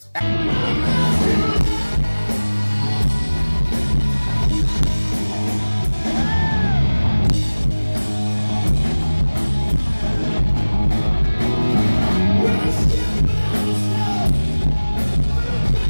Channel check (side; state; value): both; inverted; correlation -1.00